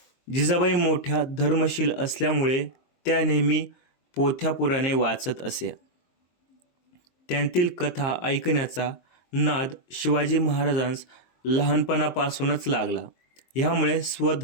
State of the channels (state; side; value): late; right; 23 ms